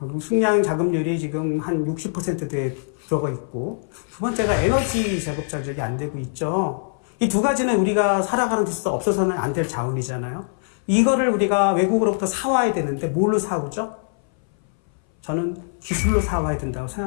식량 자급률이 지금 한 60%대 들어가 있고 두 번째가 에너지 자급자족이 안 되고 있죠. 이 두 가지는 우리가 살아가는 데 있어서 없어서는 안 될 자원이잖아요. 이거를 우리가 외국으로부터 사와야 되는데 뭘로 사오죠? 저는 기술로 사와야 된다고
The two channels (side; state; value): right; silent; 60 dB below the other